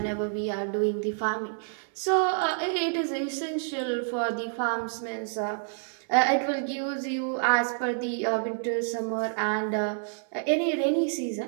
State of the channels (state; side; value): silent; left; 58 dB below the other